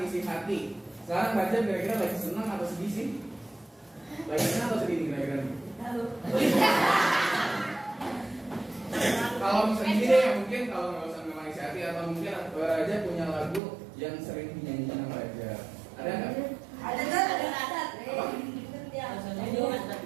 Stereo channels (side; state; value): left; drops out; at 13.6 s